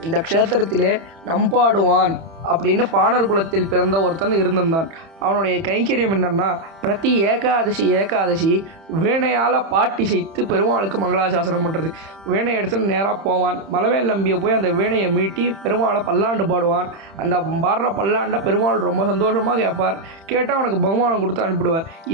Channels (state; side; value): late; left; 31 ms